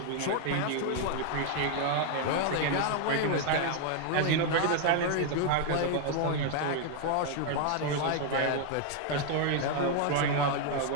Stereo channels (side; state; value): both; different; correlation 0.00